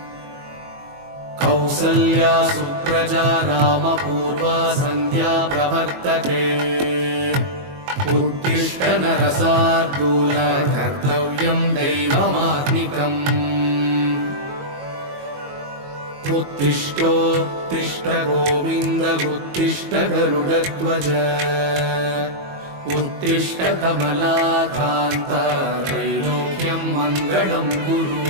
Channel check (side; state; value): left; late; 22 ms